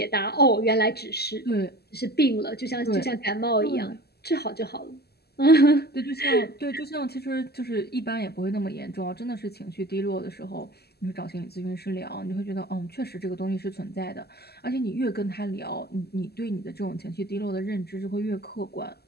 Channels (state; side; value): late; right; 0.46 ms